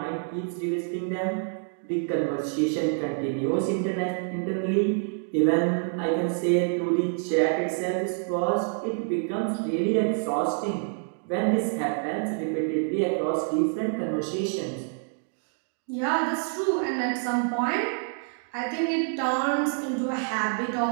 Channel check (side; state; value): left; silent; 56 dB below the other